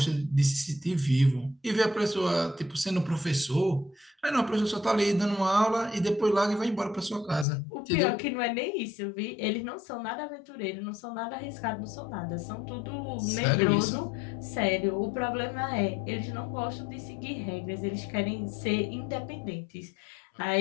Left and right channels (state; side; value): drops out; right; at 7.5 s